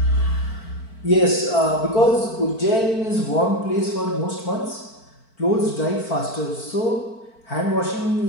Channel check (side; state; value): right; late; 4.5 ms